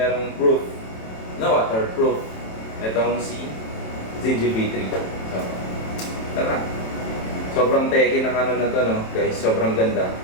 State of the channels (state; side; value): late; right; 27 ms